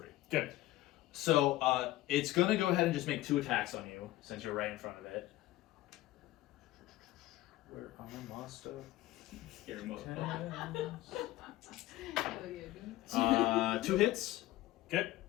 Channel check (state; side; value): quieter; right; 16.5 dB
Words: Good. So it's gonna go ahead and just make 2 attacks on you since you're right in front of it. Where armor master? Scary motherfucker. 2 hits. Okay.